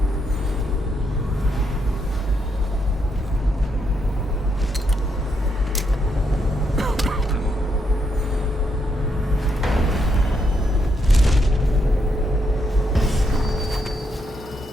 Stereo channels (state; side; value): normal; both; correlation 0.79